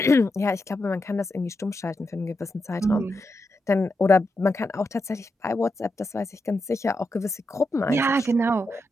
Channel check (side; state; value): both; normal; correlation 0.86